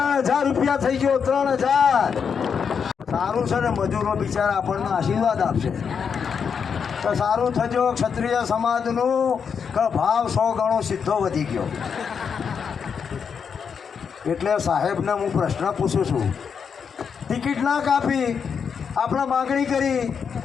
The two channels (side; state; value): right; quieter; 6.6 dB